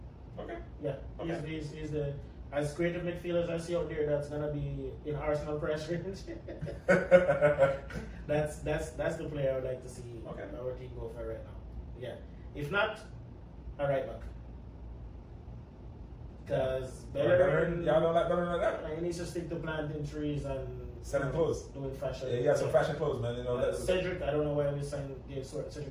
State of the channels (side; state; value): both; identical; correlation 1.00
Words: Okay. Yeah. Okay. He's the as creative midfielders I see out there that's gonna be in Arsenal press range. that's the player I would like to see our team go for right now. Yeah. If not, a right back. Because Bellerin, y'all don't like Bellerin like that. He needs to stick to planting trees and selling clothes. Doing fashion. Yeah, he has some fashion clothes, man. Cedric, I don't know why we gave